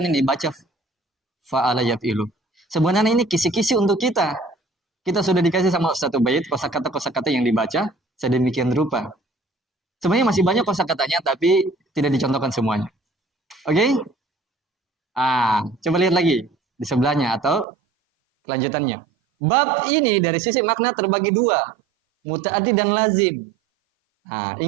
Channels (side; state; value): left; drops out; at 17.7 s